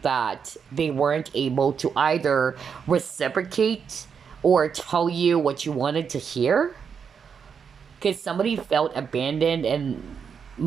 that they weren't able to either reciprocate or tell you what you wanted to hear, because somebody felt abandoned, and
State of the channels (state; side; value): quieter; left; 6.7 dB